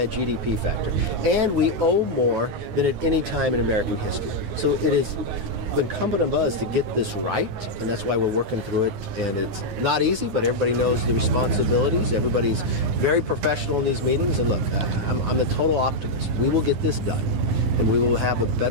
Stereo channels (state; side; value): late; left; 9.9 ms